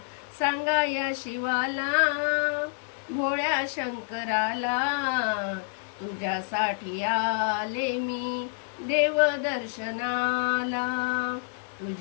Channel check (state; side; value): silent; right; digital silence